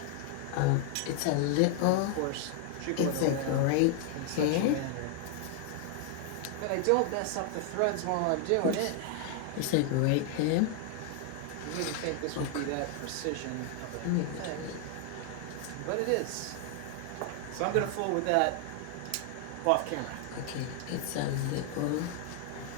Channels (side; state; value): both; different; correlation 0.00